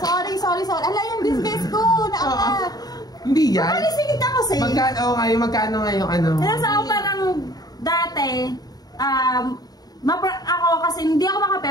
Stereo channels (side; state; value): right; late; 0.19 ms